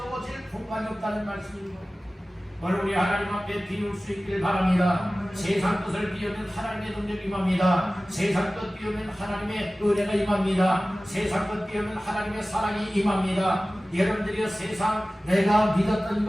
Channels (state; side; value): normal; both; correlation 0.97